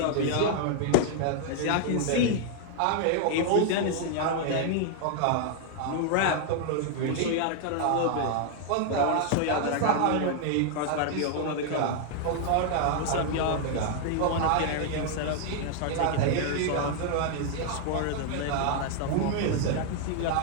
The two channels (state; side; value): different; both; correlation 0.00